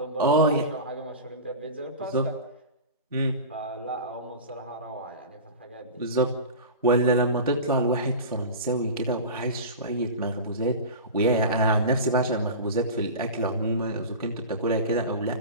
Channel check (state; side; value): inverted; both; correlation -0.30